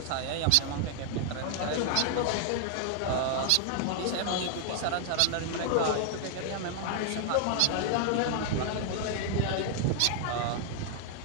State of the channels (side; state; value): both; different; correlation 0.00